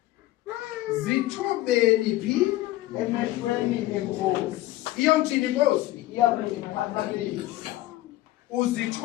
Zithobeni phi? Emehlweni enkosi, Iyomthini inkosi? iyakuphakamisa.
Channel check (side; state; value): right; quieter; 16.5 dB